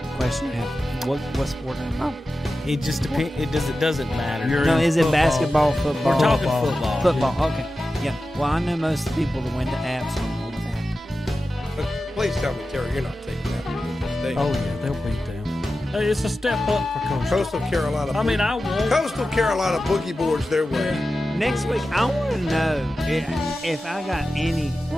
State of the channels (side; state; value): both; normal; correlation 0.93